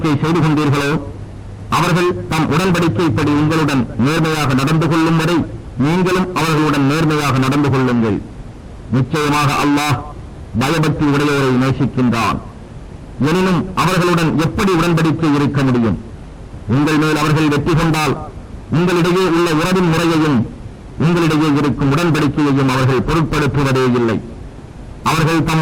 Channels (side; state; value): both; identical; correlation 1.00